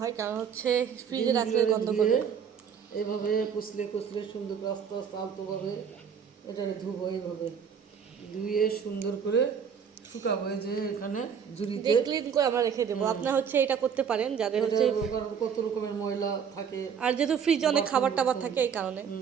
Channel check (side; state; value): left; quieter; 7.2 dB